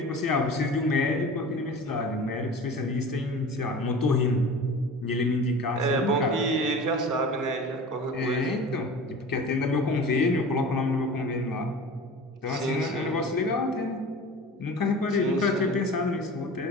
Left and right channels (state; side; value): normal; both; correlation 0.37